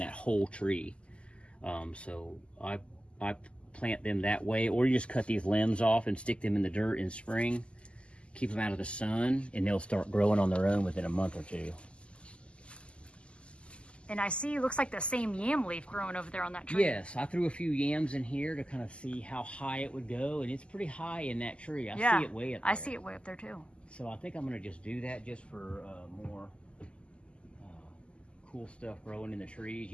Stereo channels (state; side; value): late; right; 0.054 ms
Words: whole tree. So I plant them that way, or you just cut these limbs off and stick them in the dirt in spring, keep them out of the sun, and they'll start growing on their own within a month or two. And I see, it looks like the same yam leaf growing over there on that tree. Yes, I threw a few yams in here to kind of see how high it would go, and it's pretty high in that tree. I see it way up there. I see it way up there too. So I think I'm going to just do that just for more cool stuff growing in the trees.